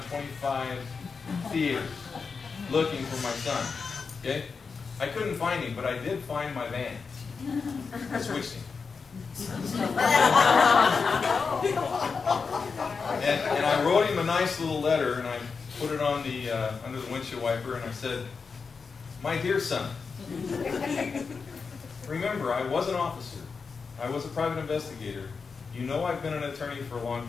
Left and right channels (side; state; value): right; quieter; 5.1 dB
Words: 25 theaters looking for my son. Okay? I couldn't find him, but I did find my van. I switched him. And I wrote him a nice little letter, and I put it on the under the windshield wiper, and I said, my dear son, remember, I was an officer. I was a private investigator. You know I've been an attorney for a long